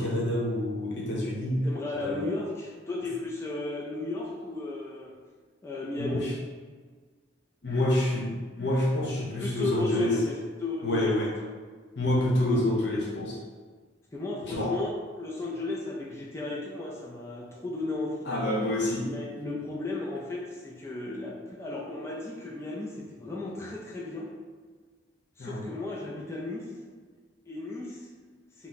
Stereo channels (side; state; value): both; normal; correlation 0.61